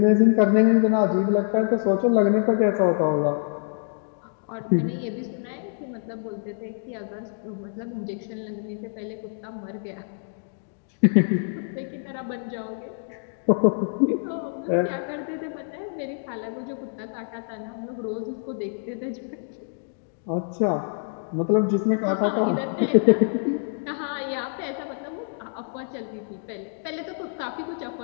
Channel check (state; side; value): silent; right; digital silence